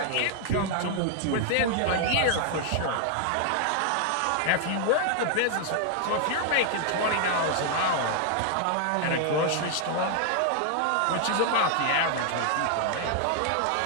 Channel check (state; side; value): different; both; correlation 0.00